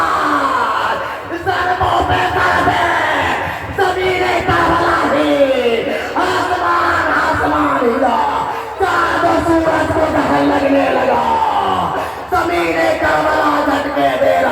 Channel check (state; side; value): identical; both; correlation 1.00